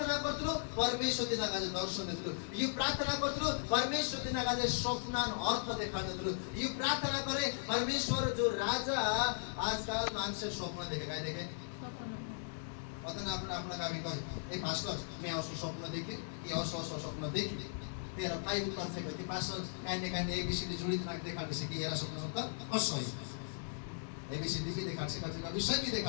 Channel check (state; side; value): silent; right; digital silence